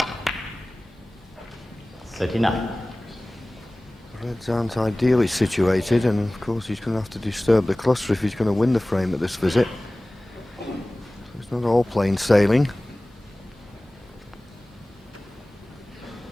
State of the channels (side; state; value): both; normal; correlation 0.98